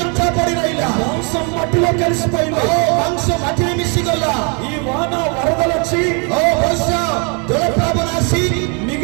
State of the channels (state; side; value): quieter; left; 35.2 dB